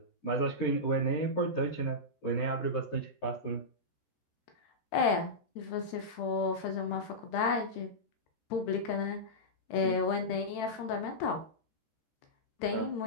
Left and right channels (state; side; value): late; right; 13 ms